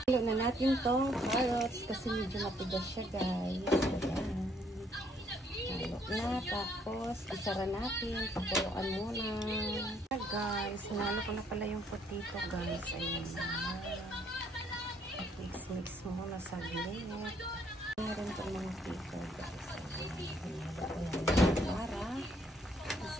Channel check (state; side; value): normal; both; correlation 0.68